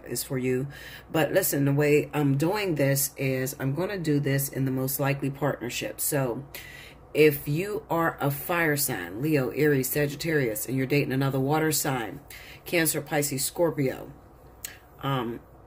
is for you. But listen, the way I'm doing this is I'm going to do this in the most likely partnership. So if you are a fire sign, Leo, Aries, Sagittarius, and you're dating another water sign, Cancer, Pisces, Scorpio,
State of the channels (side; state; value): both; identical; correlation 1.00